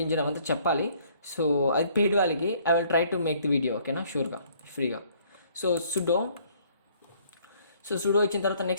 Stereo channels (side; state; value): both; inverted; correlation -0.61